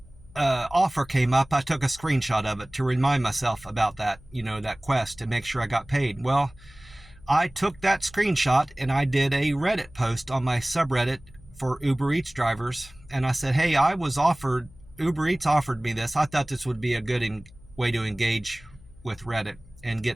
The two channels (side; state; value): left; noise; hum, 23 dB below the sound